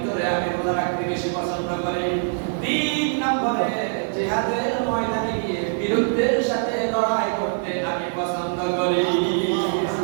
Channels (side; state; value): left; silent; digital silence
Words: আমি রোজা রাখতে বেশি পছন্দ করি তিন নম্বরে জিহাদের ময়দানে গিয়ে বিরুদ্ধের সাথে লড়াই করতে আমি পছন্দ করি